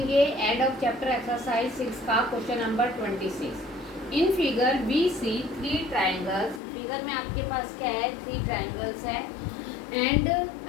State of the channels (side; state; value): right; drops out; at 6.6 s